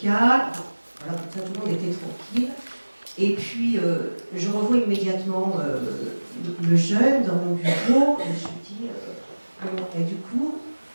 Voilà, comme ça tout le monde était tranquille. Et puis je revois immédiatement le jeune dans mon bureau et je lui dis et du coup,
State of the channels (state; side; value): inverted; both; correlation -1.00